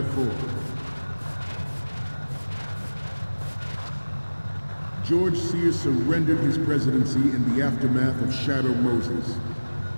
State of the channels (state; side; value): inverted; both; correlation -1.00